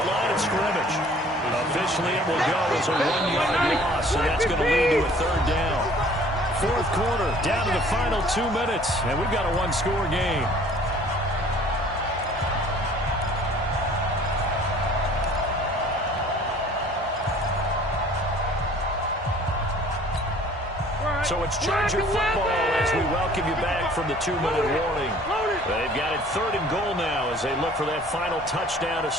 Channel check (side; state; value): both; normal; correlation 0.52